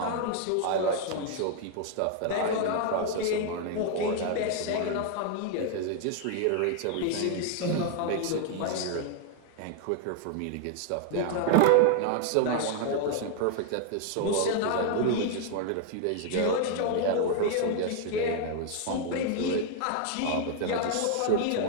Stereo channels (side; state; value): both; different; correlation 0.00